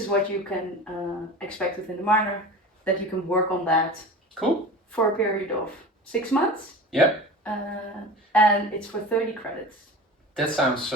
what you can expect within the minor, that you can work on that. Cool. For a period of 6 months. Yeah. And it's for 30 credits. That sounds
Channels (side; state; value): both; normal; correlation 0.33